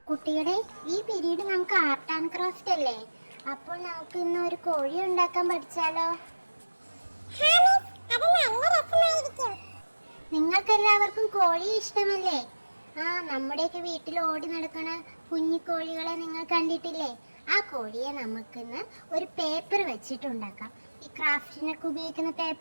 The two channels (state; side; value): inverted; both; correlation -1.00